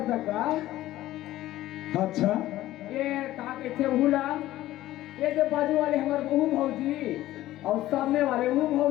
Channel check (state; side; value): quieter; right; 15.1 dB